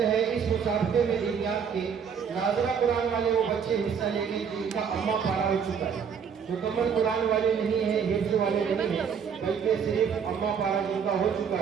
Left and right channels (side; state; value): left; quieter; 7.0 dB